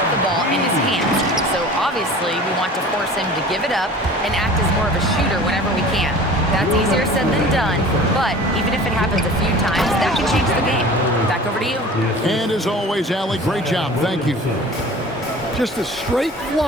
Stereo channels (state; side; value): normal; both; correlation 0.42